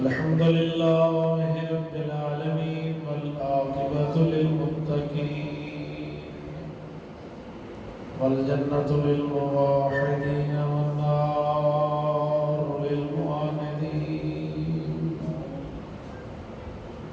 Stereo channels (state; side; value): identical; both; correlation 1.00